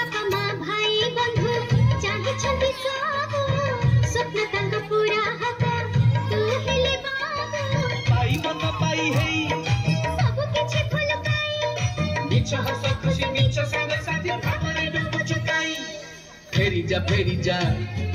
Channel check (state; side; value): identical; both; correlation 1.00